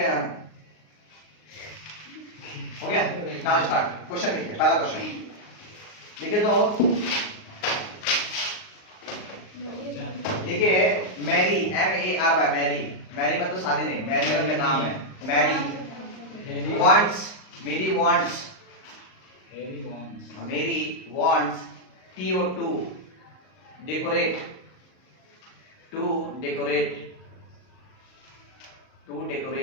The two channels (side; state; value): right; late; 38 ms